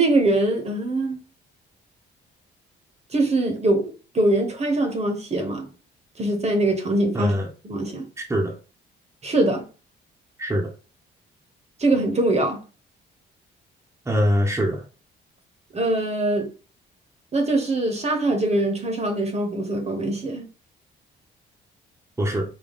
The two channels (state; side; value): normal; both; correlation 0.65